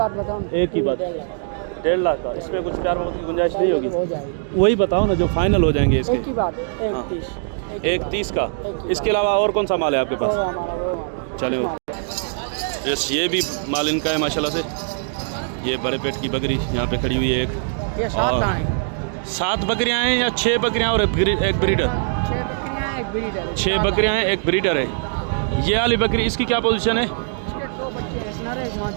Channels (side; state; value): left; silent; digital silence